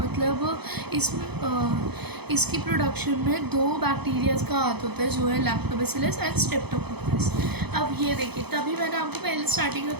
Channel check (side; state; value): left; late; 0.98 ms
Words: इसमें इसकी प्रोडक्शन में 2 बैक्टीरियाज का हाथ होता है, जो है लैक्टोबैसिलस एंड स्ट्रेप्टोकोकस। अब ये देखिए, तभी मैंने आपको पहले स्टार्टिंग में